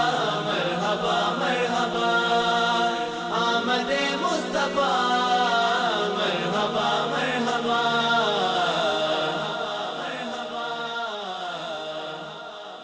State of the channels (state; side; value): identical; both; correlation 1.00